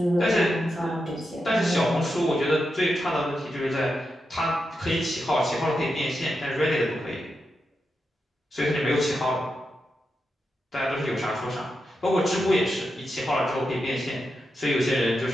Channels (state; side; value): normal; both; correlation 0.87